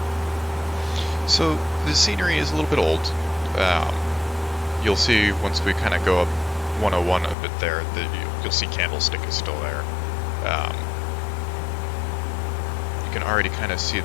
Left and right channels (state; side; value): drops out; right; at 7.4 s